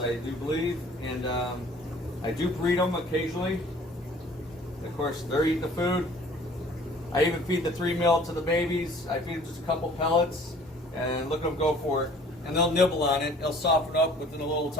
do believe, and I do breed them occasionally. Of course, they're eating the food. I even feed the 3 mil to the babies. I feed them just a couple pellets, and look at them go for it. And they'll nibble on it. They'll soften up within a little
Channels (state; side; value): normal; both; correlation 0.52